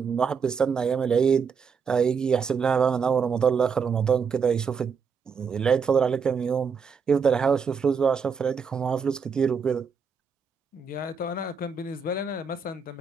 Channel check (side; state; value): left; quieter; 5.9 dB